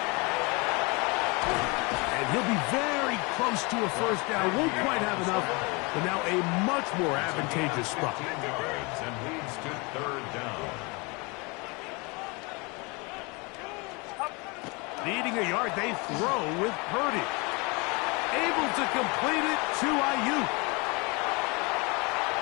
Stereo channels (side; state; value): right; quieter; 28.3 dB